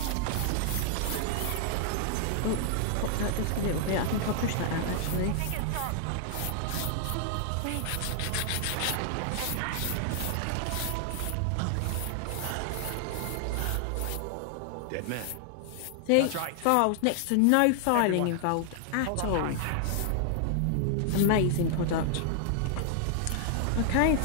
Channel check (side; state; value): both; different; correlation 0.00